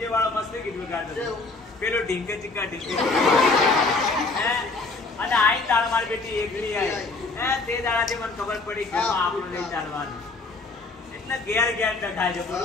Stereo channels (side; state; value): right; quieter; 3.6 dB